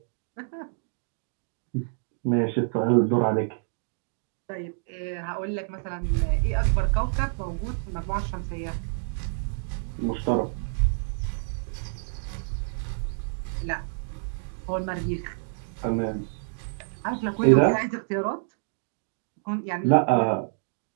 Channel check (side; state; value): left; silent; digital silence